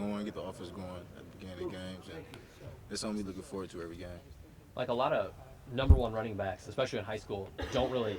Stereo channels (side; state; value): both; identical; correlation 1.00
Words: get the offense going at the beginning of games, and it's something we looking forward to every game. Like a lot of number one running backs, especially in high school, don't really